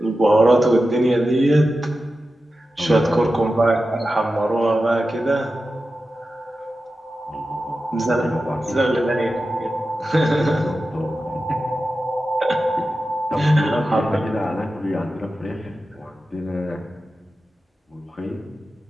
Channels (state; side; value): normal; both; correlation 0.92